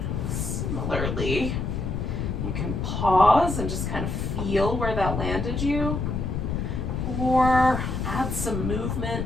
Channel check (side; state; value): left; noise; rumble, 2 dB below the sound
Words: Similarly, you can pause and just kind of feel where that landed you, or add some